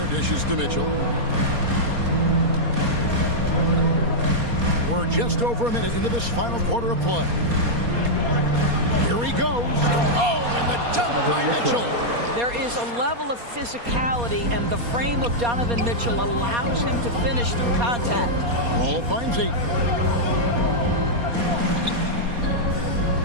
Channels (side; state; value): left; late; 4.2 ms